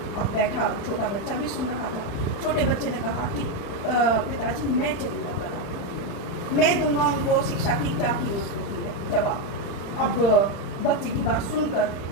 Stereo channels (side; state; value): right; late; 35 ms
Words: अब बैठा छोटा बच्चा भी सुन रहा था। छोटे बच्चे ने कहा कि पिताजी मैं चलूँगा कल, मैं दूंगा उनको शिक्षा की क्या कीमत होती है जवाब। अब बच्चे की बात सुनकर